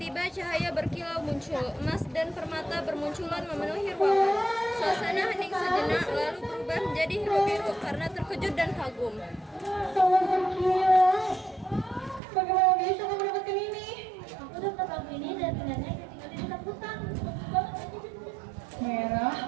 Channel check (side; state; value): left; drops out; at 12.2 s